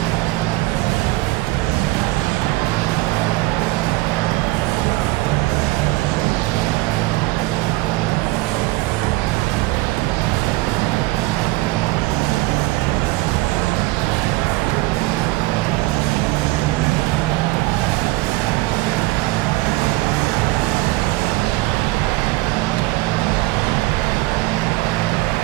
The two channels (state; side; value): quieter; left; 20.4 dB